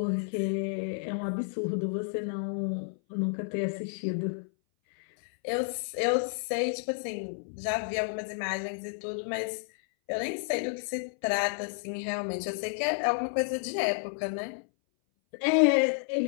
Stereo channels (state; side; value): silent; right; 57 dB below the other